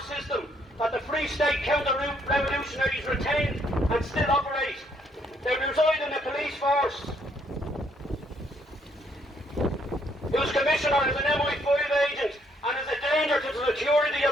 system that the Free State counter-revolutionaries retained and still operate. They reside in the police force, whose commissioner is an MI5 agent and is a danger to the security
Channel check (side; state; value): both; normal; correlation 0.70